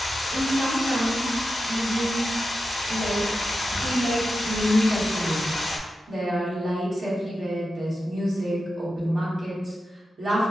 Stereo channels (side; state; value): both; normal; correlation 0.90